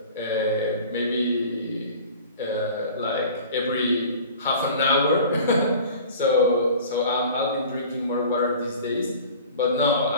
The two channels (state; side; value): inverted; both; correlation -0.43